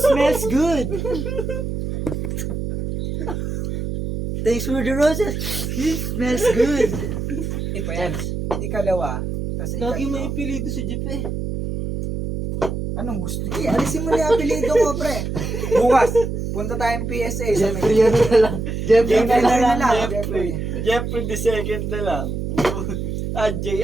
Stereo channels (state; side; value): noise; right; hum, 4 dB below the sound